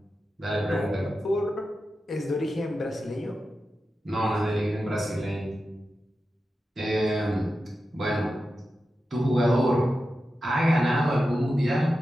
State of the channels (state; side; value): normal; both; correlation 0.91